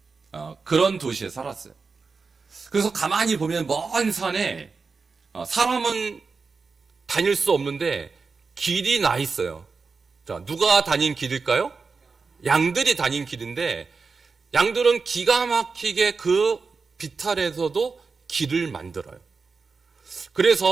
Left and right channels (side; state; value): left; quieter; 4.7 dB